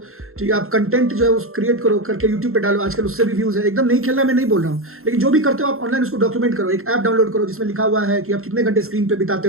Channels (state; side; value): late; left; 0.62 ms